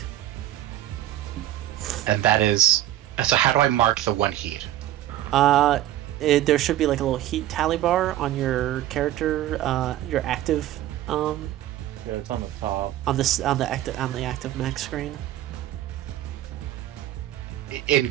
And that is. So how do I mark the 1 heat? There should be like a little heat tally bar on your character, your active, Yeah, it's on the top. on the active mech screen. In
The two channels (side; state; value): left; quieter; 13.4 dB